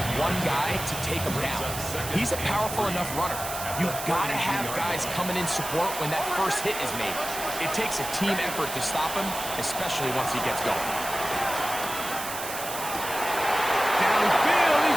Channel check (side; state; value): right; noise; hiss, 7 dB below the sound